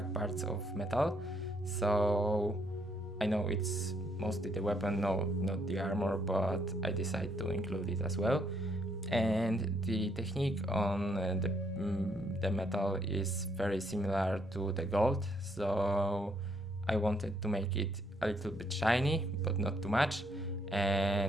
parts of metal. So I know it's mostly the weapon, no, not the armor, but I decided to include it as well. And the technique on the metal is very similar to the gold, so I wanted to make it a little bit shiny but not too much,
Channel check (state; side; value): normal; both; correlation 0.71